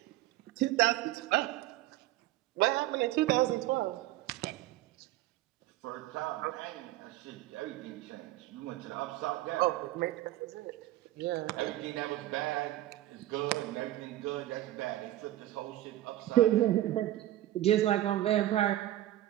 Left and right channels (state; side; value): quieter; left; 14.8 dB